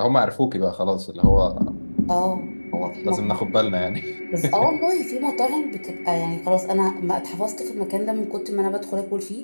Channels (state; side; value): inverted; both; correlation -1.00